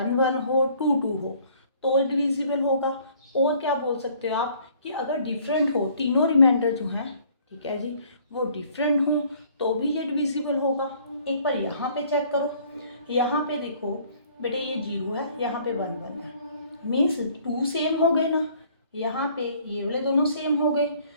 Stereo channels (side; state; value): both; inverted; correlation -0.58